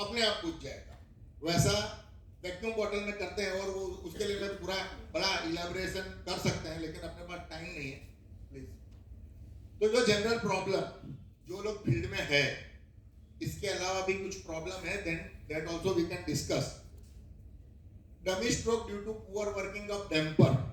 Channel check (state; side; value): identical; both; correlation 1.00